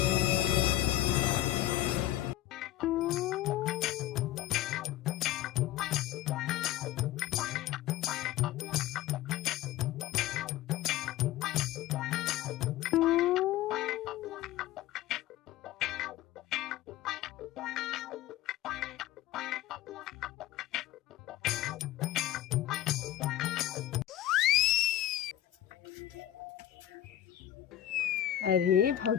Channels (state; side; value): quieter; right; 13.4 dB